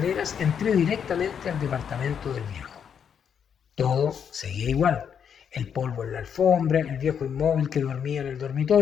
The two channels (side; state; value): right; quieter; 7.7 dB